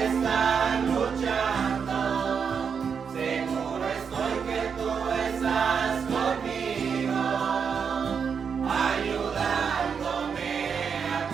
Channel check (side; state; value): left; quieter; 6.5 dB